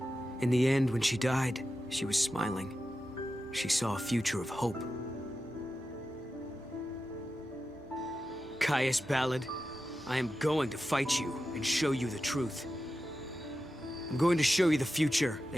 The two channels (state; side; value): normal; both; correlation 0.91